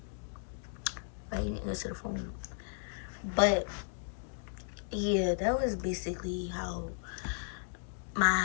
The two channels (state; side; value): silent; right; digital silence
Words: why you didn't answer the phone? But yeah, that was basically how